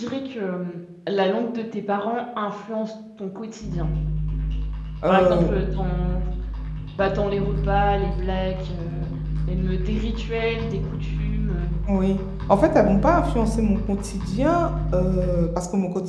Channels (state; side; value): identical; both; correlation 1.00